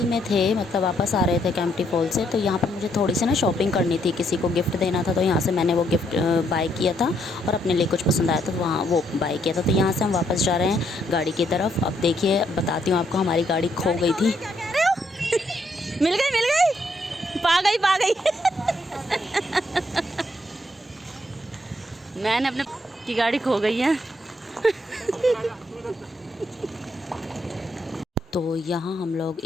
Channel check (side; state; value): both; normal; correlation 0.74